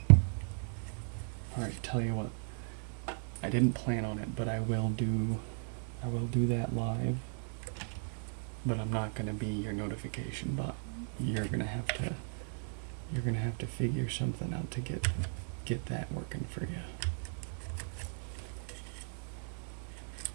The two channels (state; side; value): silent; left; 54 dB below the other